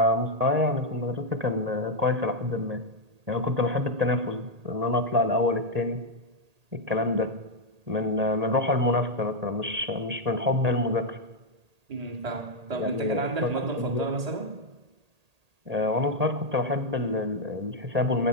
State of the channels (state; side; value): late; left; 1.8 ms